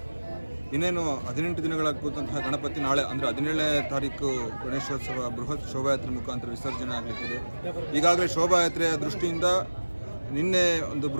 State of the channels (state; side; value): inverted; both; correlation -1.00